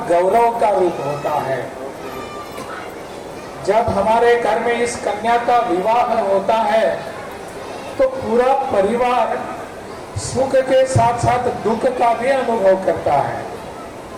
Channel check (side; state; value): both; identical; correlation 1.00